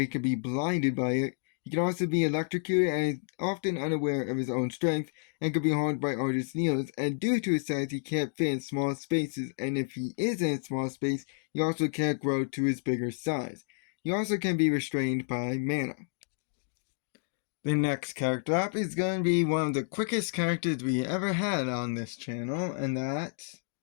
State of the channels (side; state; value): right; silent; digital silence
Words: he can be blinded by it. He can also be electrocuted and is often unaware of his own strength and can be harmed by artist needles. And due to his size, he can't fit in small spaces. And if he is in a small space, he also can't grow to his bigger size. He also can be restrained by mana. The next character up is going to be one of the quickest characters we ever had on this channel, and that's...